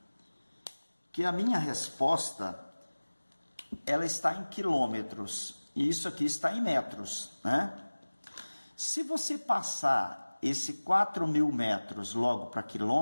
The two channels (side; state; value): both; inverted; correlation -1.00